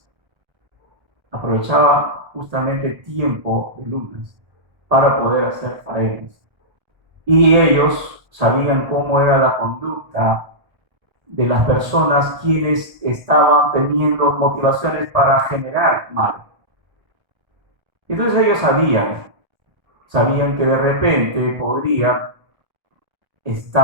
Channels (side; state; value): left; late; 1.8 ms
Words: Aprovechaban justamente el tiempo de lunas para poder hacer faenas. Y ellos sabían cómo era la conducta de las personas quienes estaban teniendo motivaciones para generar mal. Entonces ellos sabían que de repente podrían